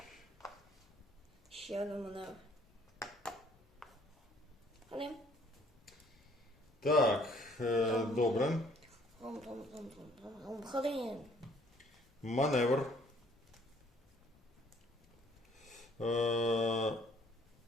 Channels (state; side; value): normal; both; correlation 0.60